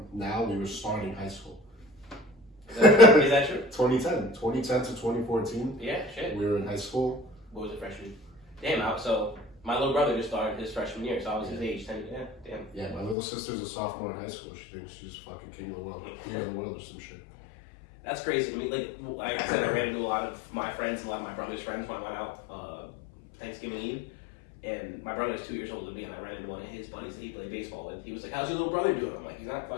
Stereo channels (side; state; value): right; drops out; at 13.2 s